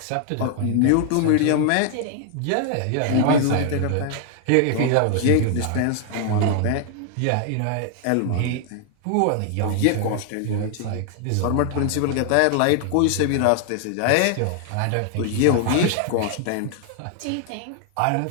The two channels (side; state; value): both; different; correlation 0.00